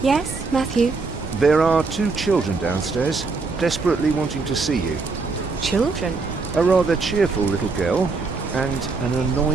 Yes, Matthew? there are 2 children downstairs, desperately wanting to see you. Children? A rather cheerful little girl and an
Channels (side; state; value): left; quieter; 4.1 dB